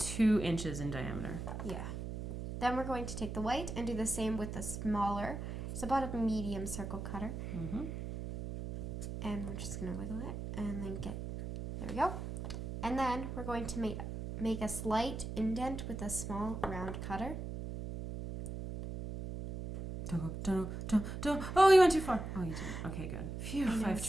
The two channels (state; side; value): noise; right; hum, 6 dB below the sound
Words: inches in diameter. Yeah. Then we're going to take the white and do the same with the smaller. It's about a medium circle cutter. Mm-hmm. And we're just going to wiggle it and then there we go. And then we're going to make a slight indent with a small round cutter. Don't. Oh, you went too far. Oh, you didn't. Okay, good. Phew, I know, I've it's